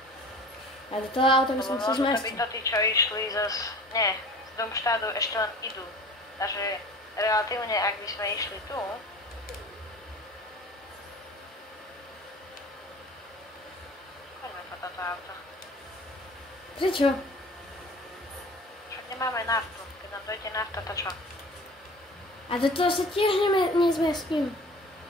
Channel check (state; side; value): normal; both; correlation 0.42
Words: A do toho auta by som Lebo sa možno zmestil. by to tí, čo išli z Domštádu ešte len idú. Takže relatívne, ak by sme išli tu, poďme po toto auto. Prečo? Však nemáme naftu. Keď nám dojde nafta, to čo? A do toho sa tiež nezmestím.